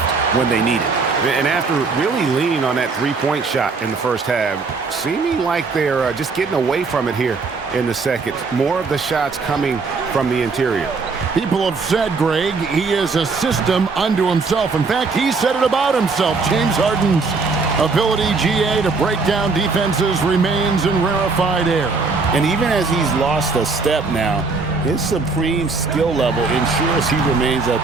when they need it. And after really leaning on that three-point shot in the first half, seeming like they're just getting away from it here in the second. More of the shots coming from the interior. People have said, Greg, he is a system unto himself. In fact, he said it about himself. James Harden's ability, GA, to break down defenses remains in rarefied air. And even as he's lost a step now, his supreme skill level ensures he remains a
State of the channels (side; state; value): left; quieter; 4.3 dB